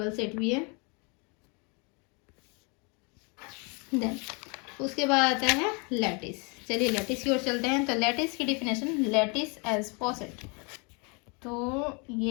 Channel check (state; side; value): quieter; right; 32.6 dB